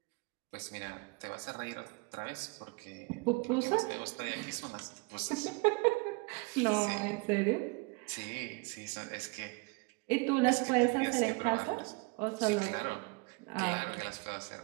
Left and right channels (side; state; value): left; quieter; 28.1 dB